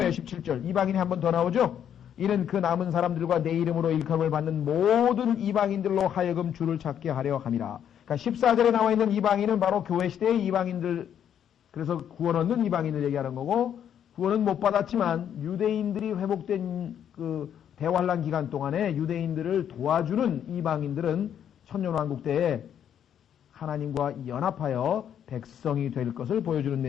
17절, 이방인이 한 번 더 나오죠. 이는 그 남은 사람들과 내 이름으로 일컬음을 받는 모든 이방인들로 하여금 주를 찾게 하려 함이라. 그러니까 14절에 나와 있는 이방인은 바로 교회 시대의 이방인들, 그래서 구원 얻는 이방인을 얘기하는 거고, 구원은 못 받았지만 유대인들이 회복된 그 대환란 기간 동안에 유대인들을 도와주는 이방인들은 천년왕국 때에 하나님과 연합하여 백성이 될 것을 보여주는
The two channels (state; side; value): quieter; right; 9.3 dB